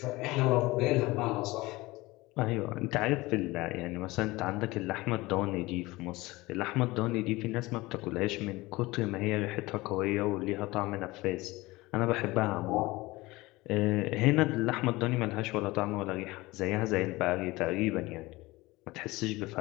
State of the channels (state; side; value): quieter; right; 20.8 dB